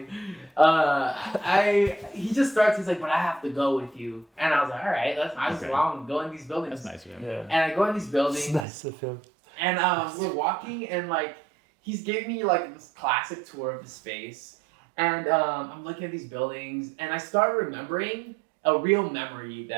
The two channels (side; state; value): left; drops out; at 8.7 s